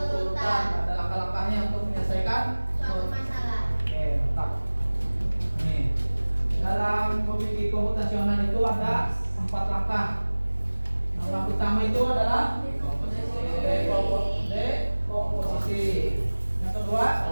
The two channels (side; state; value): both; inverted; correlation -1.00